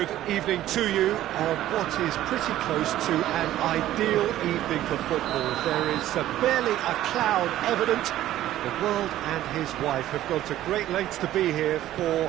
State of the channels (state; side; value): quieter; left; 13.6 dB